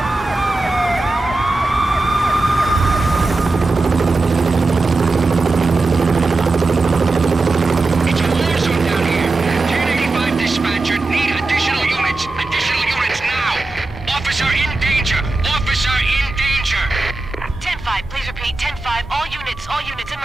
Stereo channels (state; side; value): quieter; left; 3.2 dB